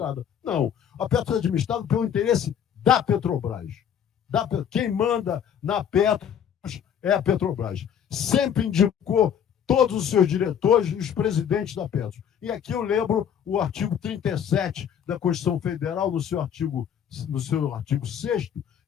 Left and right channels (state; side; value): quieter; right; 8.7 dB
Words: Não, a Petros é administrada pelo interesse da Petrobras. Quem manda na Petros é a Petrobras. Sempre indicou todos os seus diretores e os presidentes da Petros. E aqui eu lembro o artigo 37 da Constituição Federal, no seu artigo 6º,